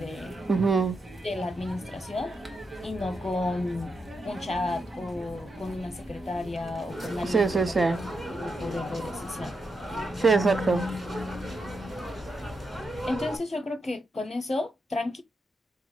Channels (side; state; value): both; normal; correlation 0.84